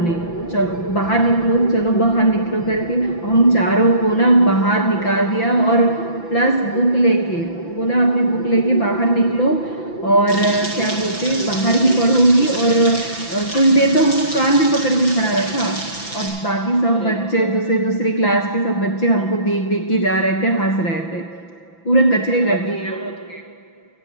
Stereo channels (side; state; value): right; late; 5.9 ms